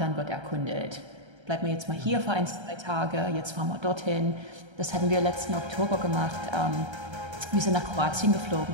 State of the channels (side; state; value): left; late; 1.3 ms